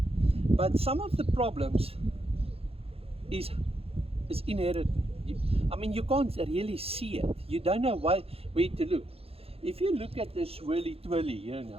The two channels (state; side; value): late; left; 0.28 ms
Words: but some of the problems is inherent. I mean, you can't really see it. You don't know where to look. If you look at this whirly twirly here